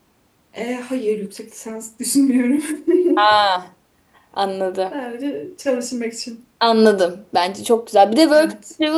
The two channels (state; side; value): identical; both; correlation 1.00